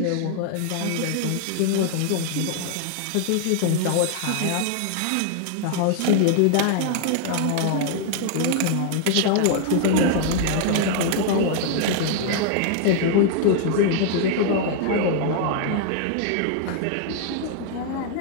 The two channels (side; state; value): both; different; correlation 0.00